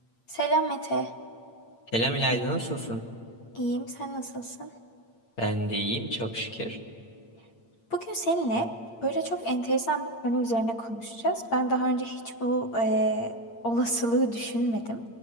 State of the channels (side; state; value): right; late; 8.7 ms